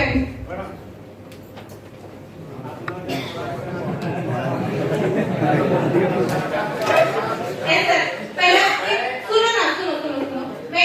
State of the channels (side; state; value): both; identical; correlation 1.00